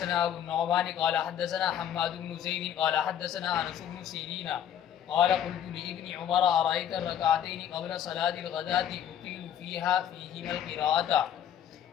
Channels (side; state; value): right; quieter; 9.8 dB